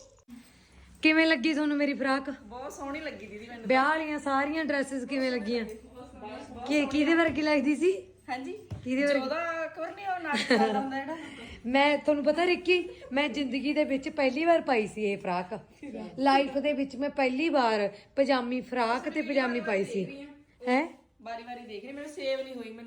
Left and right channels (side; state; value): both; identical; correlation 1.00